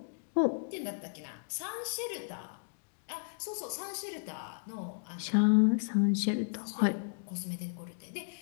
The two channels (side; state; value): right; silent; digital silence